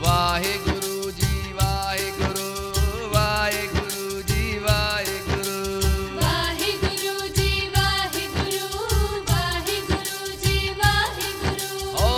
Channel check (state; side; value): identical; both; correlation 1.00